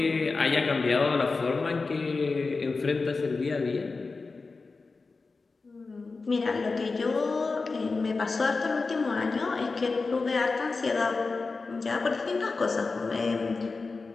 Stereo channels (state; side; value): quieter; right; 4.1 dB